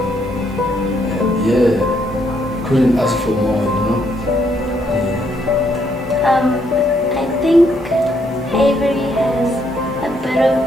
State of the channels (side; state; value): both; normal; correlation 0.73